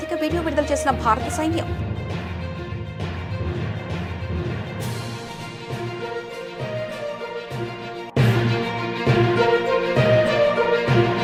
వీడియో విడుదల చేసిన భారత సైన్యం.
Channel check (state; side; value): identical; both; correlation 1.00